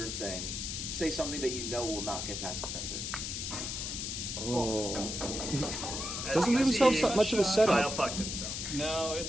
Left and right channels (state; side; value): noise; left; hiss, 4 dB below the sound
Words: thing, say something that you know will not get past the censor. Oh. As Doesn't you leave can himself see, so much of a Kyle setup. fucked himself. No,